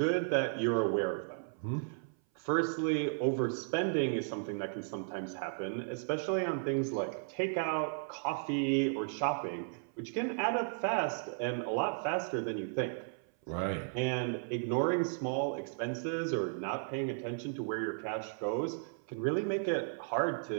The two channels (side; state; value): left; silent; 55 dB below the other